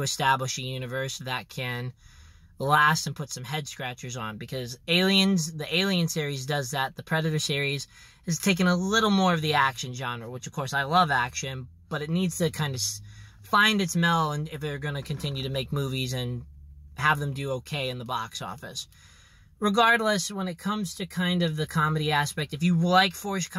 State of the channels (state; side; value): identical; both; correlation 1.00